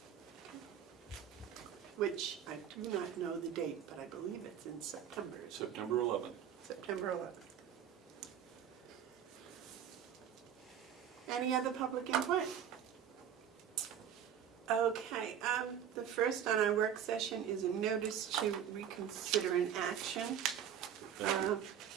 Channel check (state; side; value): quieter; left; 9.1 dB